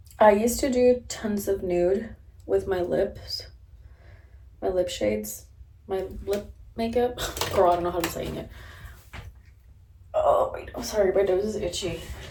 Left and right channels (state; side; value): identical; both; correlation 1.00